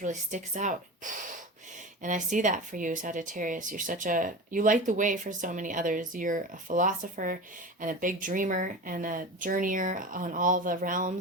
really sticks out. And I see that for you, Sagittarius. You light the way for so many others. You're a philosopher and a big dreamer and a journeyer on all the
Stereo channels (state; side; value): normal; both; correlation 0.30